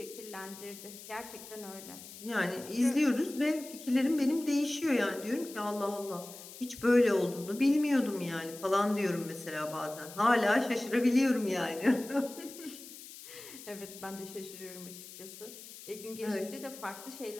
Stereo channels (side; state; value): left; noise; hiss, 15 dB below the sound